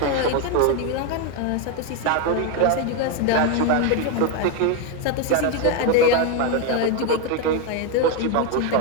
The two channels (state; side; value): different; both; correlation 0.02